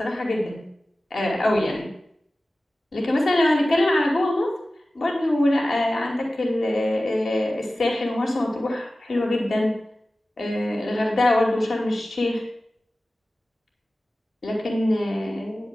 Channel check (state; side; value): normal; both; correlation 0.96